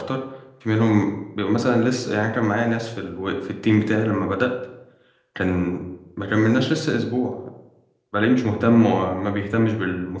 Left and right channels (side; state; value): both; identical; correlation 1.00